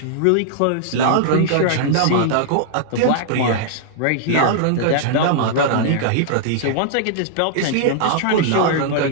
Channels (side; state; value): both; different; correlation -0.01